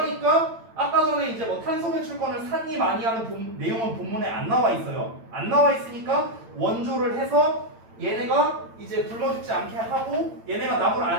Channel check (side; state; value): left; late; 8.9 ms